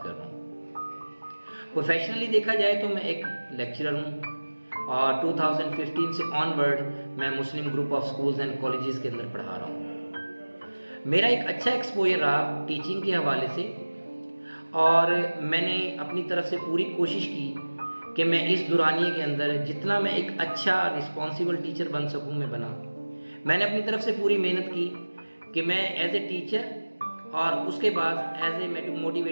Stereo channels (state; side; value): inverted; both; correlation -1.00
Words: कर रहा हूँ। प्रोफेशनली देखा जाए तो मैं एक लेक्चरर हूँ और 2015 से ऑनवर्ड मैं Muslim group of schools and colleges के अंदर पढ़ा रहा हूँ। मेरा एक अच्छा एक्सपोजर रहा टीचिंग के हवाले से और मैंने अपनी तरफ से पूरी कोशिश की कि मैं इस दुरानिये के अंदर जितना मैं एक अच्छा रिस्पॉन्सिबल टीचर बन सकूँ मैं बना। मैंने अपनी तरफ से पूरी मेहनत की कि मैं एज ए टीचर और उसके बाद एज ए